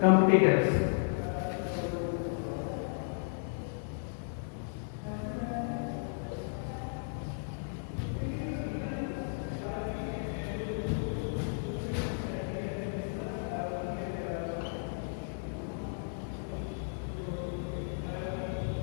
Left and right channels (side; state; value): right; silent; digital silence